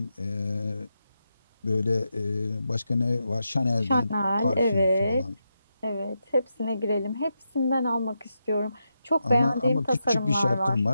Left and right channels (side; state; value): both; inverted; correlation -0.85